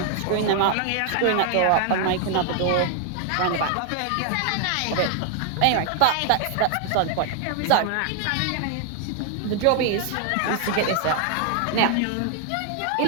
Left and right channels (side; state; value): both; different; correlation 0.00